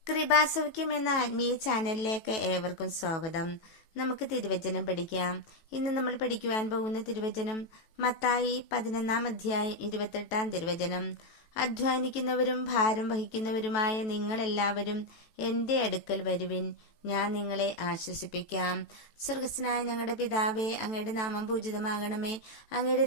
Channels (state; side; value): late; right; 18 ms